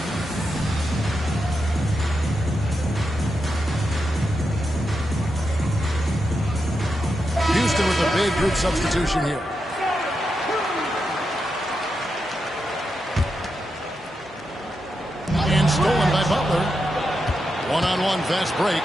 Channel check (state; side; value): normal; both; correlation 0.86